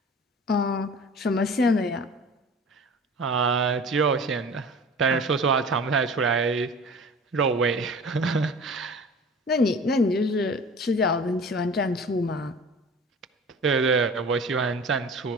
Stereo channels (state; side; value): normal; both; correlation 0.41